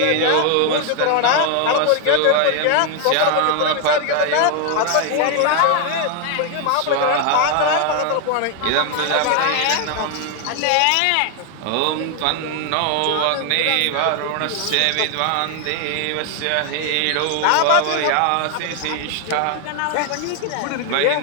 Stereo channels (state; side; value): different; both; correlation 0.00